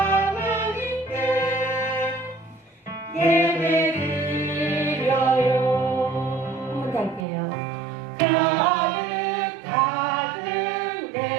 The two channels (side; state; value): left; drops out; at 7.2 s